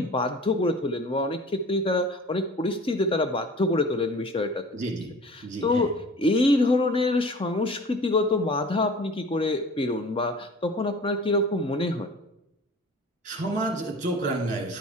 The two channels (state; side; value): normal; both; correlation 0.43